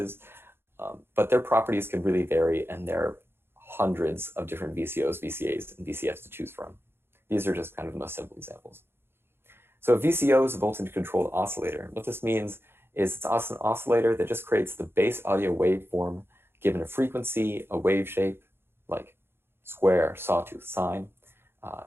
but their properties can really vary, and there are hundreds of different VCOs, VCAs, and VCFs to choose from. These are just kind of the most simple examples. So a VCO is a voltage-controlled oscillator. What this means is it's an oscillator that just creates the base audio waveform given a frequency, a wave shape, like square, sawtooth, sine,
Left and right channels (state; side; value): late; left; 0.11 ms